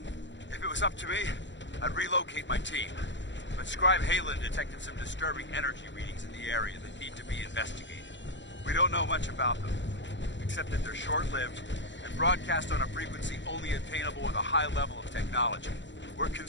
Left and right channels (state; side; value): late; right; 0.53 ms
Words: If it was up to me, I'd relocate my team. But Scribe Halen detected some disturbing energy readings in the area that need to be investigated. We don't know much about them, except that they're short-lived and broadcast on a frequency only attainable with a high level of technology. We're